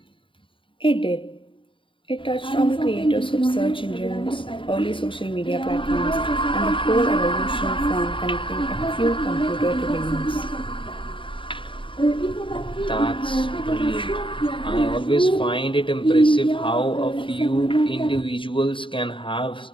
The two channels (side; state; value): right; late; 0.25 ms